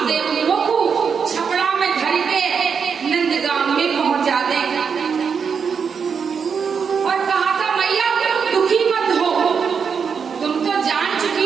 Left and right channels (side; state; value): left; quieter; 6.3 dB